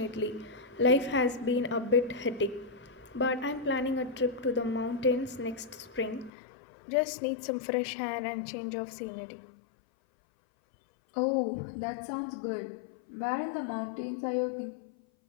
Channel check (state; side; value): drops out; right; at 6.3 s